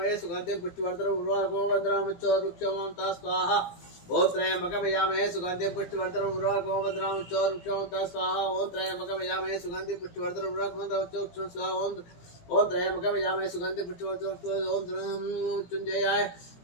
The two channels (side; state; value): right; late; 17 ms